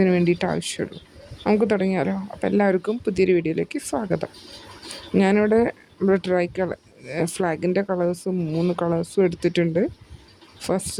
വേണ്ടിയിട്ട് ആവശ്യമുള്ളൂ. നമുക്ക് തുടങ്ങിയാലോ? അപ്പോൾ എല്ലാവർക്കും പുതിയൊരു വീഡിയോയിലേക്ക് സ്വാഗതം. ഞാനിവിടെ ട്രൈ ഫ്ലാഗിൻ്റെ കളേഴ്സും 3 കളേഴ്സും എടുത്തിട്ടുണ്ട്.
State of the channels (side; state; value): both; identical; correlation 1.00